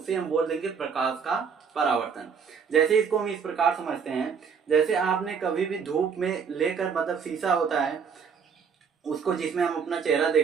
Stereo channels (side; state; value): left; quieter; 6.3 dB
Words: हम बोल देंगे प्रकाश का परावर्तन। जैसे इसको हम इस प्रकार समझते हैं, जैसे आपने कभी भी धूप में लेकर मतलब शीशा होता है उसको, जिसमें हम अपना चेहरा